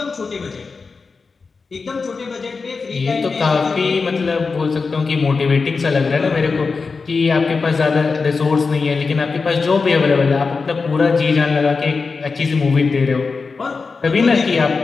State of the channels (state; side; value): quieter; right; 4.6 dB